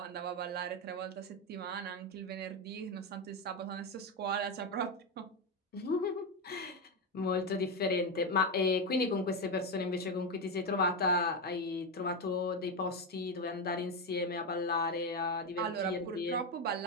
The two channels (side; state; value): both; normal; correlation 0.10